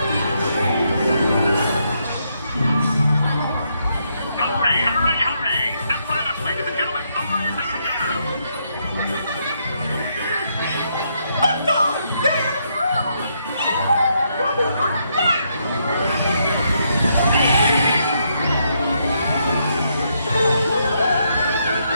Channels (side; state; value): both; inverted; correlation -0.76